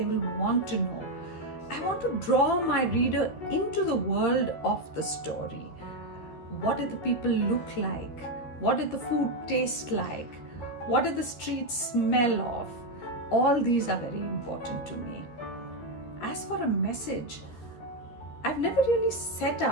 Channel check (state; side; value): late; right; 13 ms